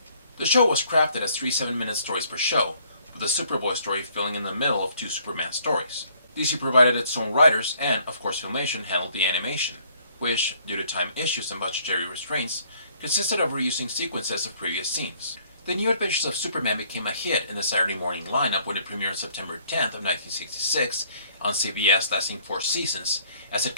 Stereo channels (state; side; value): inverted; both; correlation -0.62